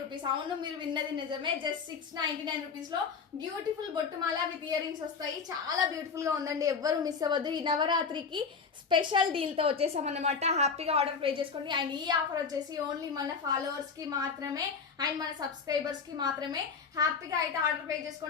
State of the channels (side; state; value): right; quieter; 5.5 dB